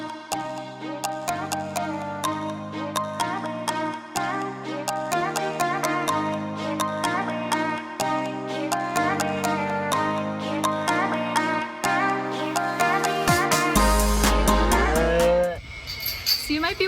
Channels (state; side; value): identical; both; correlation 1.00